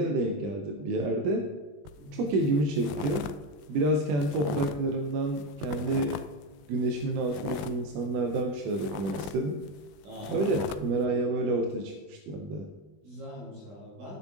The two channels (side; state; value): left; late; 20 ms